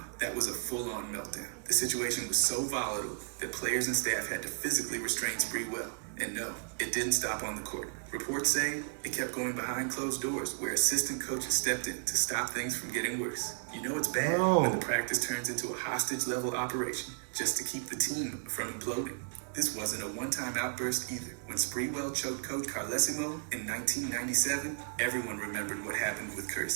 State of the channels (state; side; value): silent; left; digital silence